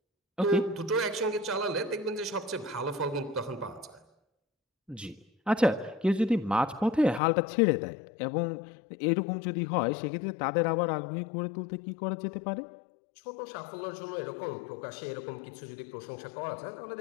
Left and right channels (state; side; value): drops out; right; at 7.2 s